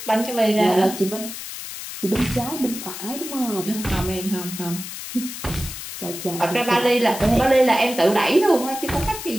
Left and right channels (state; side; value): noise; left; hiss, 9 dB below the sound